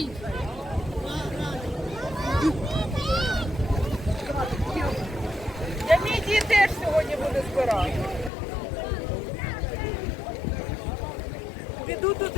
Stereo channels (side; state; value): right; drops out; at 8.3 s